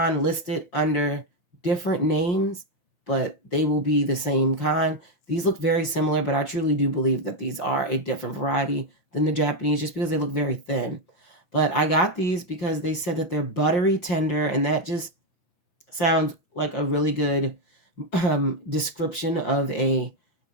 listed under different names, but they will be the same kind. These look very similar, but I truly do believe that these are a different variety than the Japanese, just because they look very thin. But I got these because they said that they're buttery tender, and that just sounds like a really good description of a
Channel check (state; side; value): late; right; 5.9 ms